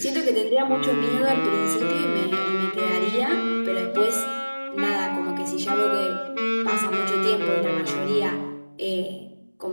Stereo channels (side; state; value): both; inverted; correlation -1.00